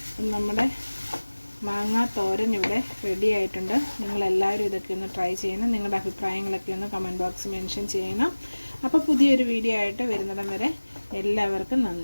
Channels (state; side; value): inverted; both; correlation -1.00